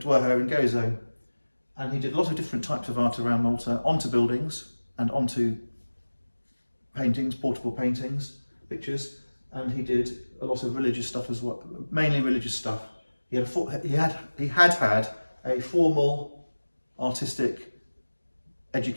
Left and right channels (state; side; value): inverted; both; correlation -1.00